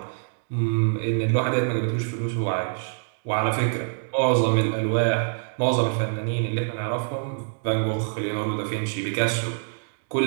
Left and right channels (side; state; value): left; silent; 62 dB below the other